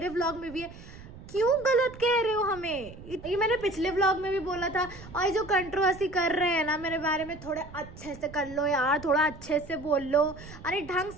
व्लॉग में भी है। क्यों गलत कह रहे हो हमें? ये मैंने पिछले व्लॉग में भी बोला था। और ये जो कंट्रोवर्सी कर रहे हैं ना मेरे बारे में, थोड़े अच्छे से कर लो यार, थोड़ा अच्छे से बोल लो, अरे ढंग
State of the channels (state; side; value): noise; right; rumble, 16 dB below the sound